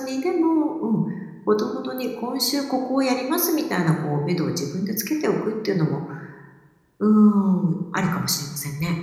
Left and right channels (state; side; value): identical; both; correlation 1.00